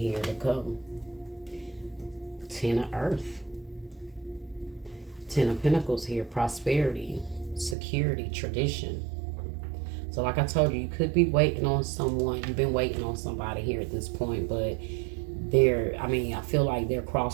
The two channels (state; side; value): drops out; left; at 7.8 s